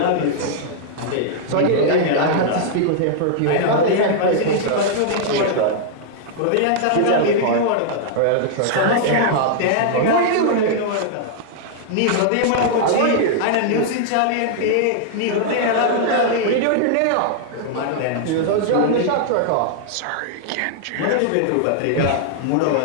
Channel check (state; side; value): different; both; correlation -0.01